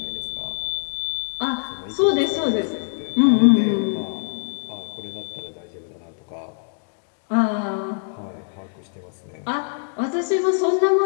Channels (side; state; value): right; silent; digital silence